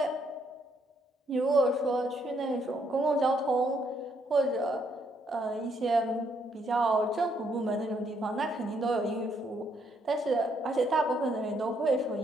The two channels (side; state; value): both; normal; correlation 0.72